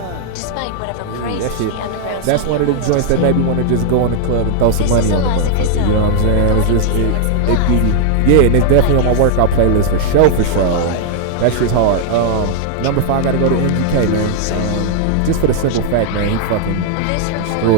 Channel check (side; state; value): both; different; correlation -0.01